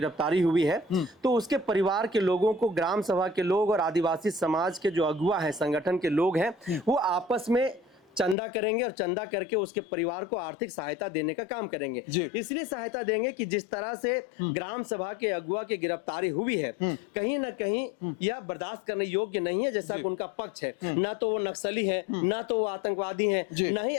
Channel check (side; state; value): right; drops out; at 8.3 s